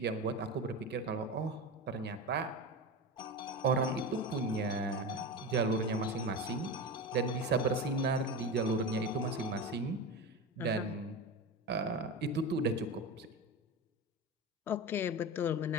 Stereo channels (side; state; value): both; normal; correlation 0.23